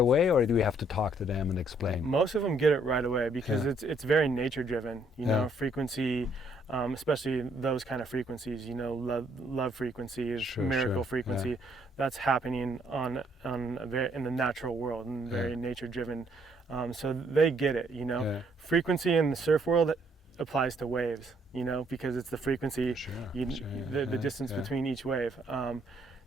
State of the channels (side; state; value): both; normal; correlation 0.68